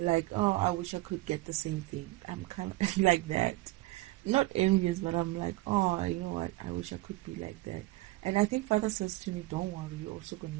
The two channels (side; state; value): left; quieter; 19.3 dB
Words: like, oh, I wish I could get the same thing. I'm kind of like that. Not envious, but I'm like, oh, you know what? I wish I could be like that. And I think Father says to me, don't worry, you're also going